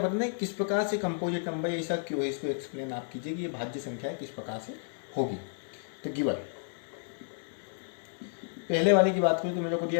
है किस प्रकार से कंपोजिट नंबर है, ऐसा क्यों है, इसको एक्सप्लेन आप कीजिए कि ये भाज्य संख्या है किस प्रकार से होगी। तो गिवन पहले वाले की बात करूँ तो मेरे को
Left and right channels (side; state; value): right; silent; 57 dB below the other